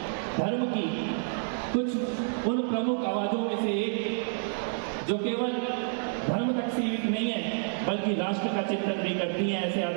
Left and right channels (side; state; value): left; silent; 59 dB below the other